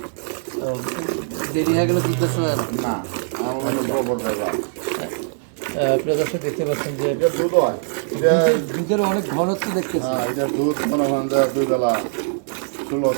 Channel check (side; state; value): left; silent; digital silence